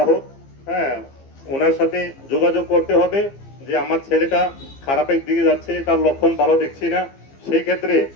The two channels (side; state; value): right; late; 15 ms